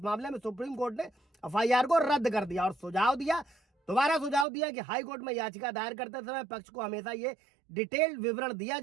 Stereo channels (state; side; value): drops out; left; at 4.5 s